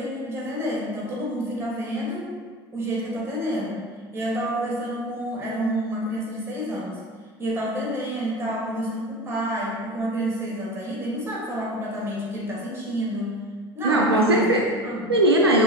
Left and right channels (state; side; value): normal; both; correlation 0.26